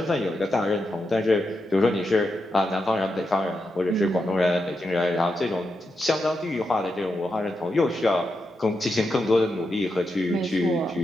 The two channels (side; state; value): both; normal; correlation 0.86